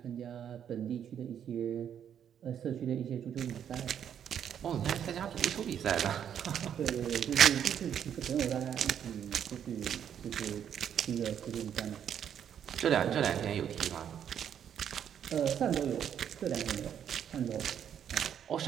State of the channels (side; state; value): left; quieter; 9.0 dB